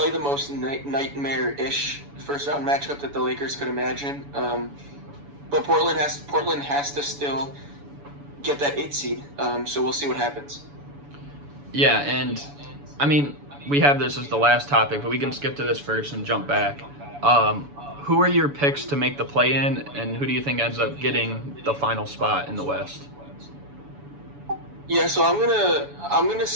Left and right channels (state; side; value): late; left; 7.0 ms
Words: the most nightmare-ish first-round matchup that the Lakers could imagine. But Portland has to still get that 8 seed, so we'll see what happens. Yeah, and I mean, we have this as the last topic, but we can skip to this first and jump back. Who are your picks to make the play-in, and who do you think ends up getting the final spot in the West? Yeah, so I'm gonna